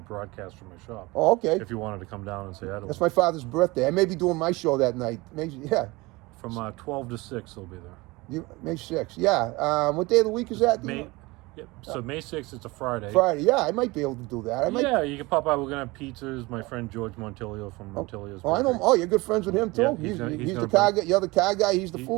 broadcast from my shop. Oh, okay. If you wanted to come down and say hi to That's them. my father's birthday. I may be doing my show that night. Maybe, yeah. From 12 to 6, they'll be there. May 6th. Yeah. What day of the week is that? Yep. So May 6th, it's a Friday. Friday. Yeah, I might be able to do that. Yeah, you can pop by. We're going to have pizzas. My friend George Montilio from Montilio's. Oh, I know. Oh, you're good friends with him too. Yeah, he's the car guy. You're the car guy. He's the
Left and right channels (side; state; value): left; quieter; 22.7 dB